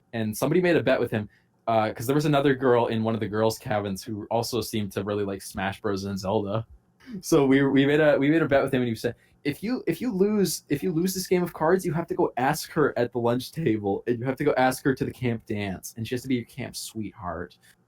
and somebody made a bet with him because there was another girl in one of the girls' cabins who also seemed to really like Smash Bros. And Zelda. So we made a bet with him, and he said, if you lose this game of cards, you have to go ask her at the lunch table, and you have to go ask her to the camp dance, and she has to be your camp sweetheart.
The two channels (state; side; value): identical; both; correlation 1.00